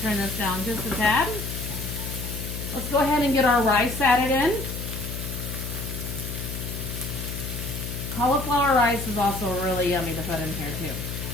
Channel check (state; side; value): noise; left; hum, 6 dB below the sound